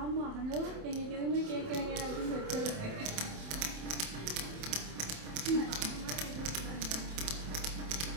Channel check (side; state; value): left; late; 27 ms